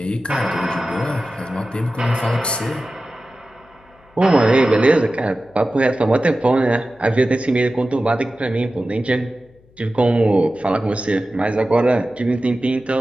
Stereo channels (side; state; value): left; noise; hum, 30 dB below the sound